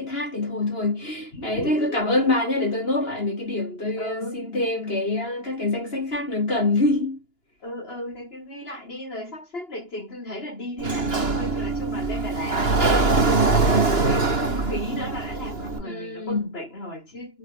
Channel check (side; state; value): right; late; 2.9 ms